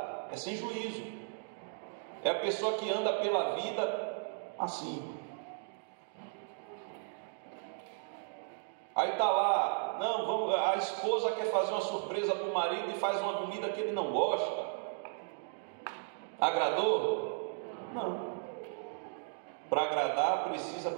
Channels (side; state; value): left; silent; digital silence